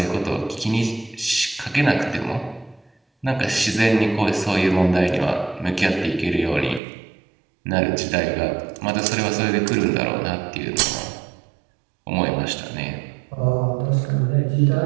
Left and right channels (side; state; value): left; drops out; at 6.8 s